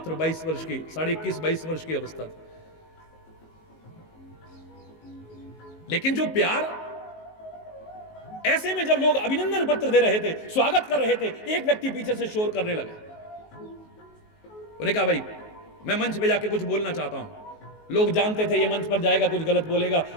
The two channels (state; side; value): late; right; 19 ms